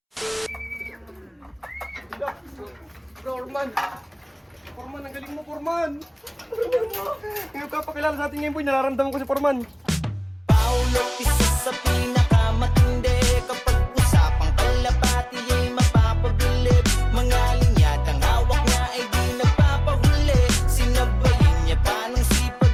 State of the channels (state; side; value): identical; both; correlation 1.00